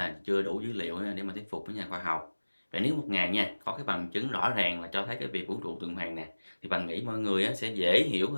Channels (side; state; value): both; inverted; correlation -1.00